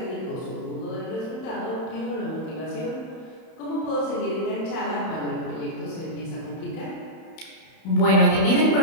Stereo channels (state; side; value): late; right; 31 ms